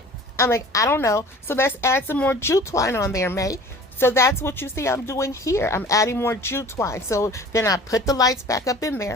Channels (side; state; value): both; normal; correlation 0.45